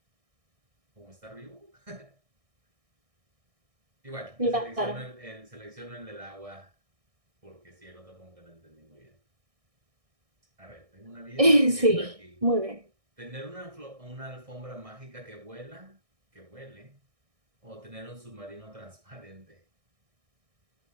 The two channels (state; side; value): late; left; 1.6 ms